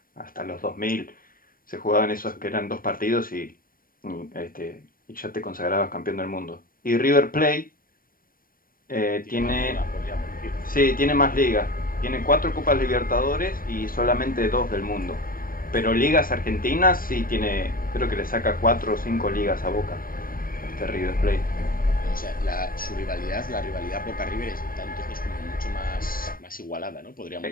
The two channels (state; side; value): late; right; 0.41 ms